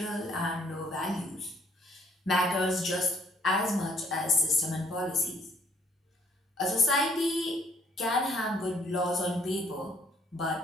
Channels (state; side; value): normal; both; correlation 0.64